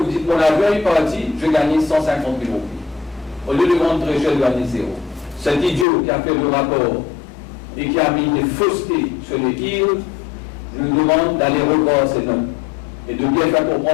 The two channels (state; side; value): drops out; right; at 5.9 s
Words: dites, mon avion est parti, je gagne 150 000 roupies. Au lieu de vendre très cher, je gagne 0. Cet idiot qui a fait le rapport et qui a mis des faussetés sur les yields, je lui demande d'aller revoir ces notes et de bien faire